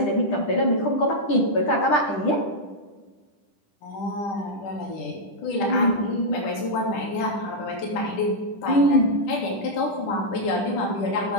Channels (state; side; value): late; right; 10 ms